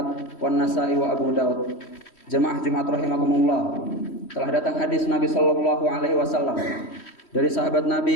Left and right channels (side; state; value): right; late; 3.1 ms